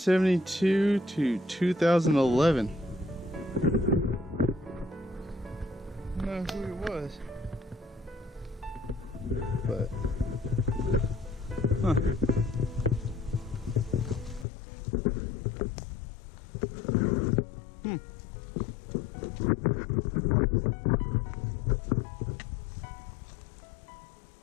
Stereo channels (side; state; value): right; drops out; at 14.5 s